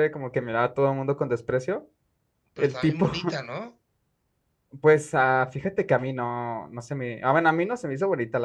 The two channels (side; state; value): both; identical; correlation 1.00